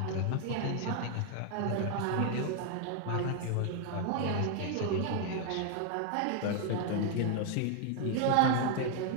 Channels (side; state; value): both; different; correlation 0.00